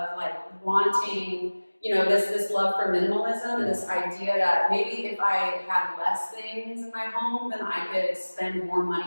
like wanting, you know, this love for minimalism and this idea that maybe if I had less things in my home, then I could spend more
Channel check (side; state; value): both; inverted; correlation -1.00